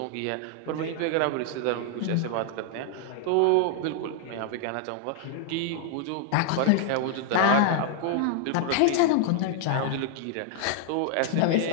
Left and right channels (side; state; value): both; different; correlation 0.00